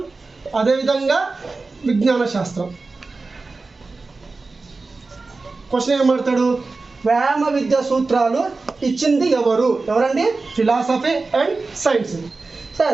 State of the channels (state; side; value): quieter; left; 3.8 dB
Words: అదేవిధంగా విజ్ఞాన శాస్త్రం. క్వశ్చన్ ఏమడతాడు? వ్యాయామ విద్య సూత్రాలు ఇచ్చింది ఎవరండి? Philosophy and science.